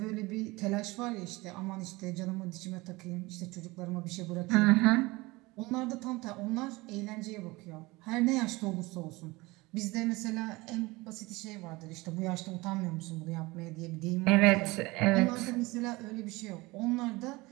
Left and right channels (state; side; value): quieter; left; 22.3 dB